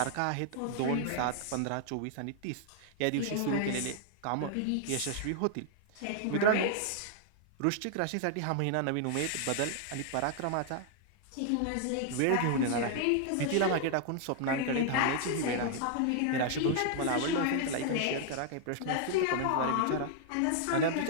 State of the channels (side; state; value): both; different; correlation -0.01